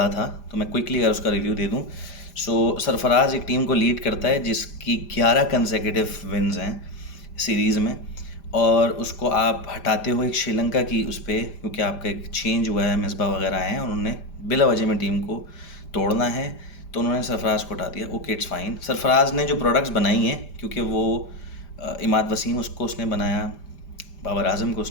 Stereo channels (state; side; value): late; right; 5.0 ms